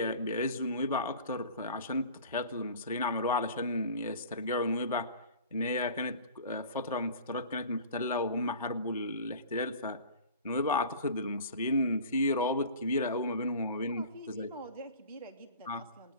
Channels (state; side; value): inverted; both; correlation -0.42